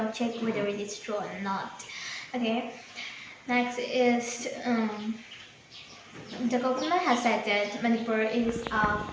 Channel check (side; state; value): both; identical; correlation 1.00